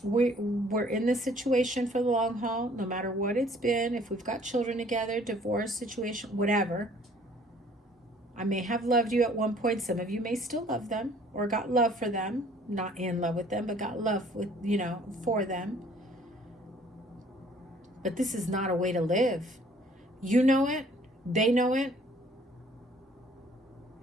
We're in this situation for the long haul, no matter what it's been. If we've got children together, divorce situation, whatever. I may have loved you at one point. Some of you may still love them or got love for them. Not in love with them, but got love with, for them. But this is not a way to live. You know it. They know it.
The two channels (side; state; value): both; normal; correlation 0.57